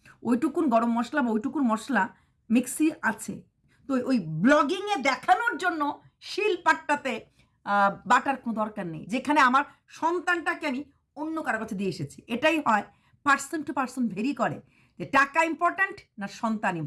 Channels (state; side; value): identical; both; correlation 1.00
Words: ওইটুকুন গরম মশলা বা ওইটুকুন মশলা মিক্সি আছে। তো ওই ব্লগিংয়ে দেখানোর জন্য শিল পাট্টাতে বাটার কোনো দরকার নেই, যেখানে আমার সন্তানটাকে আমি অন্য কারো কাছে দিয়ে এসেছি। এটাই হয়, পার্সন টু পার্সন ভেরি করে, যে টাকা ইম্পর্ট্যান্ট না সন্তান